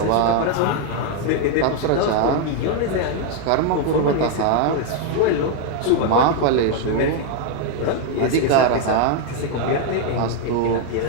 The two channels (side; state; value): both; different; correlation 0.00